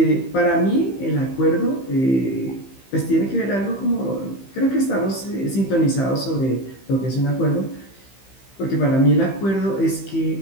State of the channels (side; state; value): right; late; 15 ms